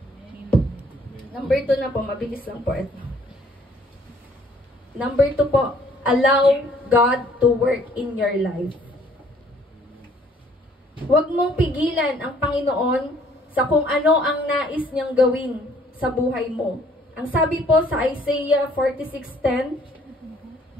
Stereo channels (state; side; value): normal; both; correlation 0.61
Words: Number 2 na po, mabilis lang po ito. Number 2 po, allow God to work in your life. Huwag mong pigilan ang Panginoon sa kung ano ang nais niyang gawin sa buhay mo. Ang sabi po sa Isaiah 46:10,